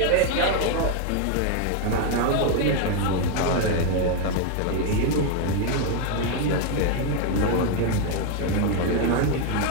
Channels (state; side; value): different; both; correlation 0.01